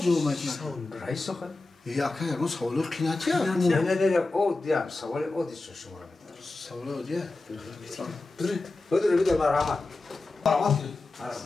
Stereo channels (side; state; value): right; quieter; 3.2 dB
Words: میکنه؟ رئیس آخه یکی اون سوالو قیناتی نه او دیم سوال او دیست شما رو میدارم سوال او دیه؟ بدر مرحمت مرحمت